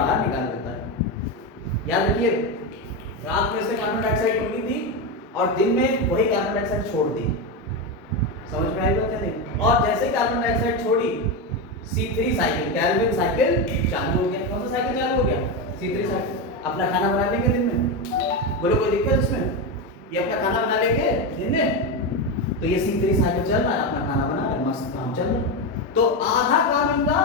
निकाल देता है। याद रखिए, रात में से कार्बन डाइऑक्साइड निकली थी और दिन में वही कार्बन डाइऑक्साइड छोड़ दी। समझ में आई बात है नहीं? और जैसे कार्बन डाइऑक्साइड छोड़ी, C3 साइकिल, कैल्विन साइकिल चालू हो गया। कौन सा साइकिल चालू हो गया? C3 cycle. अपना खाना बना लेंगे दिन में, बोलो कोई दिक्कत इसमें? ये अपना खाना बना लेंगे दिन में, तो ये C3 साइकिल चल रहा है, अपना खाना बना रहे, मस्त काम चल रहा है। तो आधा काम इनका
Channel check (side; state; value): both; normal; correlation 0.13